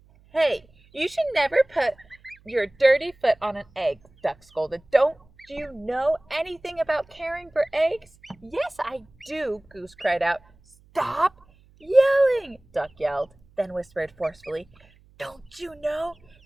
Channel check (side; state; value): right; noise; hum, 29 dB below the sound